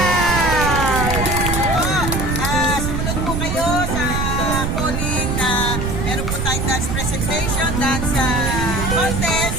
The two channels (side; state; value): right; noise; rumble, 1 dB below the sound